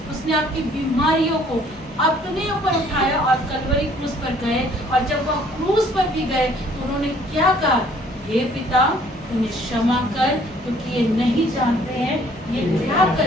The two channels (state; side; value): normal; both; correlation 0.59